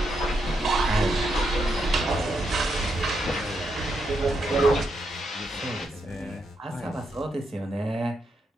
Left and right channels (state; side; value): normal; both; correlation 0.81